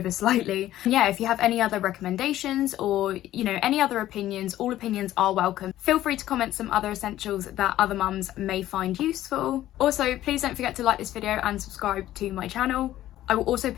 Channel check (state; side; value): quieter; right; 13.7 dB